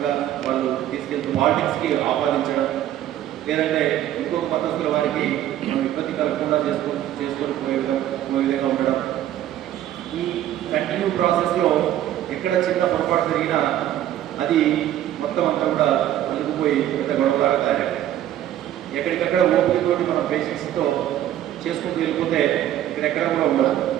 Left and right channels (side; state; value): left; quieter; 12.3 dB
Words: వాళ్ళు తీసుకెళ్తూ పాలిటిక్స్కి ఆపాదించడం, లేదంటే ఇంకొక మతస్థుల వారికి మనం ఇబ్బంది కలగకుండా చేసుకొని పోయే విధంగా ఉండడం, ఈ కంటిన్యూ ప్రాసెస్లో ఎక్కడ చిన్న పొరపాటు జరిగినా అది మొత్తం అంతా కూడా అలుగుపోయి పెద్ద గొడవలాగా తయారయ్యాయి. ఎక్కడికక్కడ ఓపికతోటి మనం పేషెంట్స్తో చేసుకుంటూ వెళ్ళిపోతే ఇక్కడెక్కడ కూడా ఉండదు,